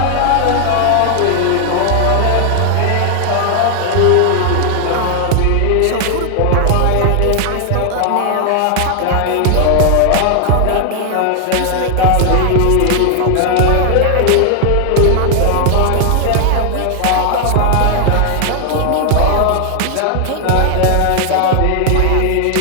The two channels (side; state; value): both; different; correlation 0.00